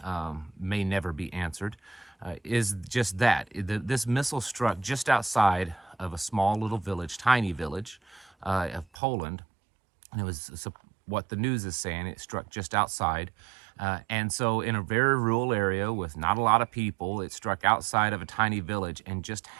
may never be answered is just that. This missile struck just outside of a small little village, tiny village of Poland. And it was what the news is saying. It struck just outside. And so in a very rural area with not a lot of people, it struck outside of a tiny village and just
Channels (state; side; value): drops out; left; at 8.8 s